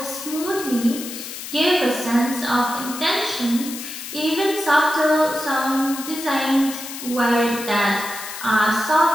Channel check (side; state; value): left; noise; hiss, 9 dB below the sound